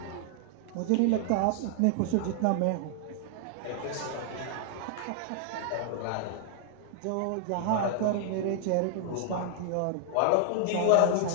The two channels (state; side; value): different; both; correlation 0.00